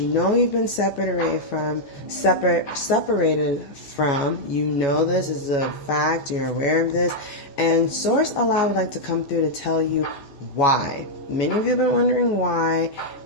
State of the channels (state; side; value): late; right; 14 ms